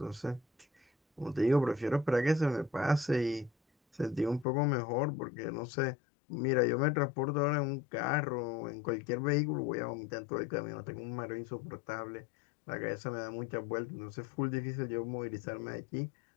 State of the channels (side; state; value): right; drops out; at 4.5 s